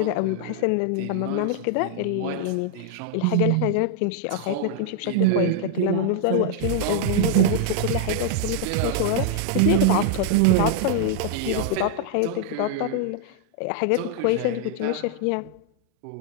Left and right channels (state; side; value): different; both; correlation 0.00